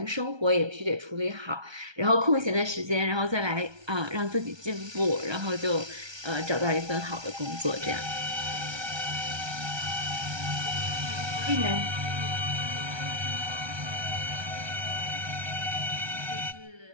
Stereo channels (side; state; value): left; late; 1.3 ms